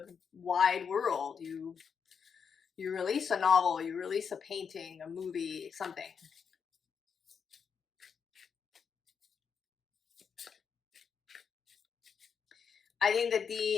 wide world. You release a novel, you release a painting, a movie, something. I think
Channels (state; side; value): quieter; right; 6.6 dB